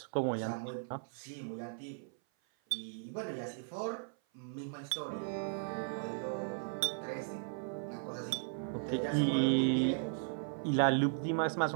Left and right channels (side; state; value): left; silent; 53 dB below the other